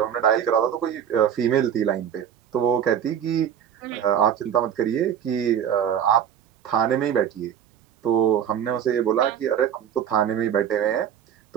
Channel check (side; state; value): left; quieter; 9.1 dB